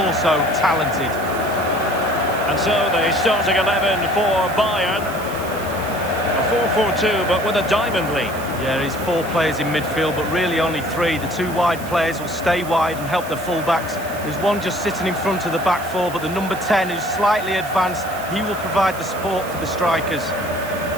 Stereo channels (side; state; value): right; noise; hiss, 16 dB below the sound